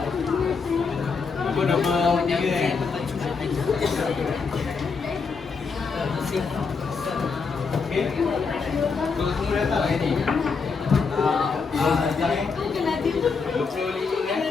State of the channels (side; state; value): right; quieter; 5.0 dB